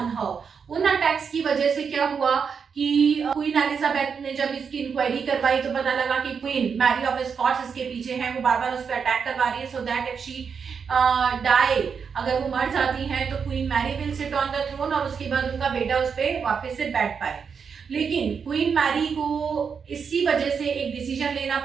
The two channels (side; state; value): left; quieter; 6.3 dB